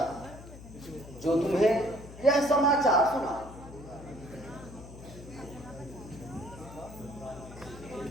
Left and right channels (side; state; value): left; noise; hum, 15 dB below the sound